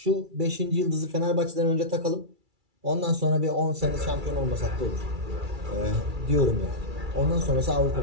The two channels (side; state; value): left; late; 2.3 ms